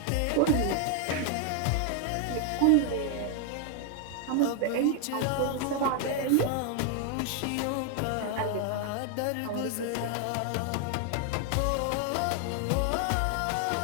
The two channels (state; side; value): different; both; correlation 0.00